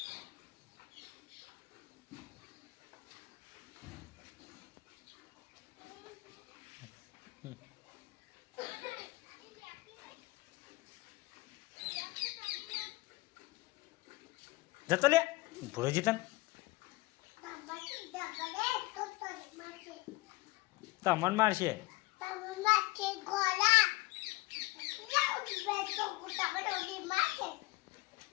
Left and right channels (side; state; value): right; quieter; 21.7 dB